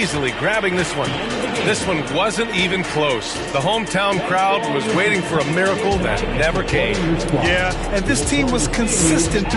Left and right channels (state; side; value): identical; both; correlation 1.00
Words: grabbing this one. This one wasn't even close. The hometown crowd was waiting for a miracle that never came. Yeah, and this team was consistent